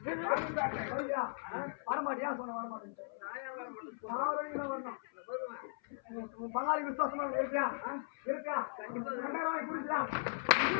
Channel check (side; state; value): right; silent; 53 dB below the other